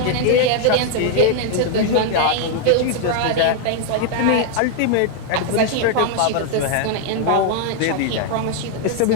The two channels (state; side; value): different; both; correlation 0.00